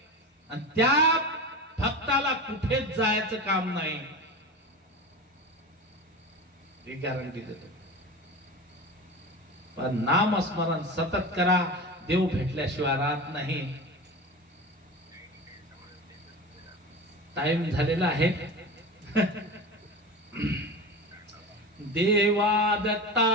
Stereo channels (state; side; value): normal; both; correlation 0.28